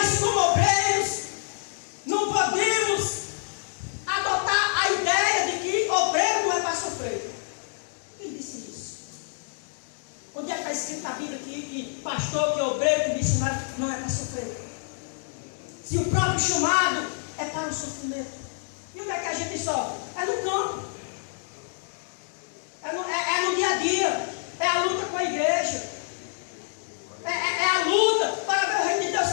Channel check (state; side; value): silent; right; digital silence